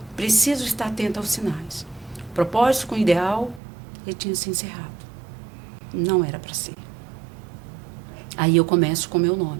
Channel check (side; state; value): left; drops out; at 3.6 s